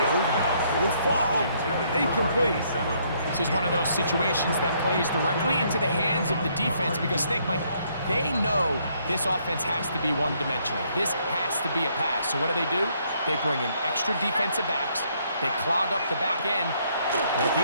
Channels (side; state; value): both; inverted; correlation -0.69